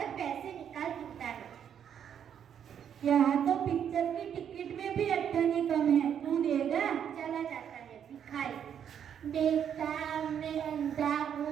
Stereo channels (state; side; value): quieter; left; 8.7 dB